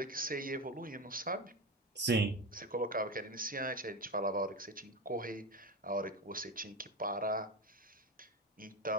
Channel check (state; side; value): normal; both; correlation 0.19